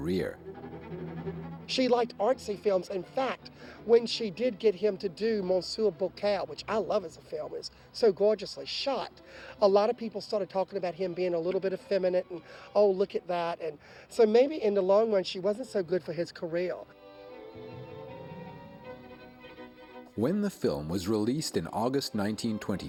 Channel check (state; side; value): identical; both; correlation 1.00